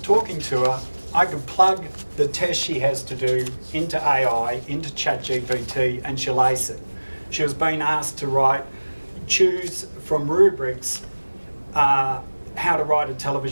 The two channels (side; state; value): both; inverted; correlation -1.00